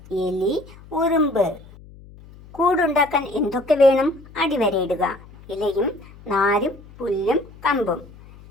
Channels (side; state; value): left; noise; hum, 21 dB below the sound